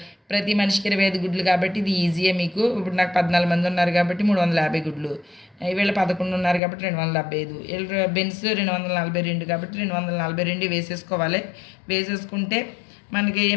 ప్రతి మనిషికి 25 గుడ్లు కాబట్టి ఇది ఈజీయే మీకు. ఇప్పుడు నాకు 14 మంది ఉన్నారు కాబట్టి 350 గుడ్లు. వీళ్ళు 11 ఉన్నారు కాబట్టి 275. వీళ్ళు బెన్స్ 242 కాబట్టి 242 వేసేసుకోవాలి. వేసేసుకుంటే మనకి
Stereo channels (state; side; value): drops out; right; at 6.6 s